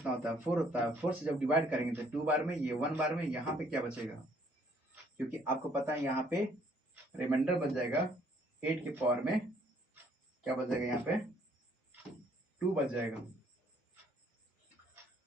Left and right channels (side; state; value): both; normal; correlation 0.63